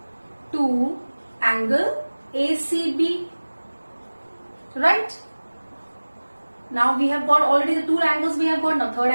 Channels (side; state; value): both; inverted; correlation -1.00